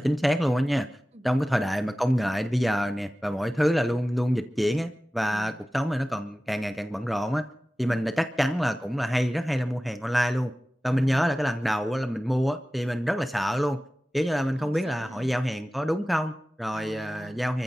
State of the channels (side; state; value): both; normal; correlation 0.96